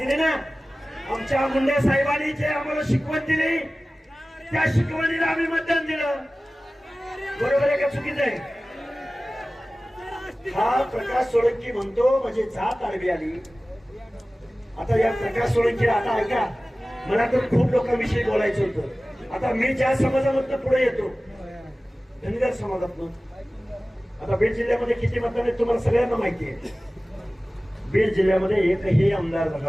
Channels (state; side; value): normal; both; correlation 0.97